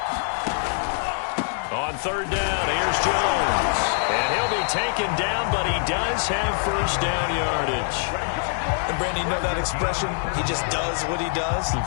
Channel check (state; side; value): silent; right; digital silence